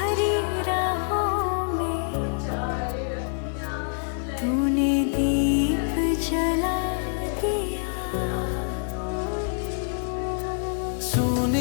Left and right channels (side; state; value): right; silent; 61 dB below the other